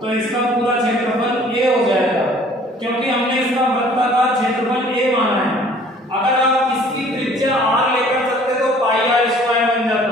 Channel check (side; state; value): both; normal; correlation 0.54